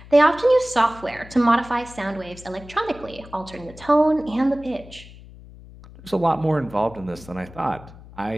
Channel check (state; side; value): noise; left; hum, 19 dB below the sound